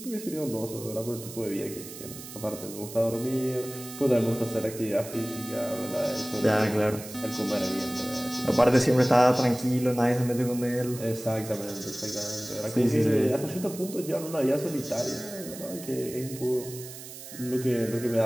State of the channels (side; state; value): right; noise; hiss, 13 dB below the sound